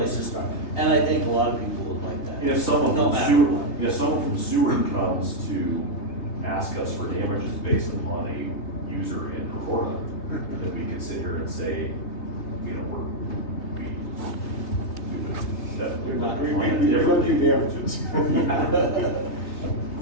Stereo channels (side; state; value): right; late; 3.3 ms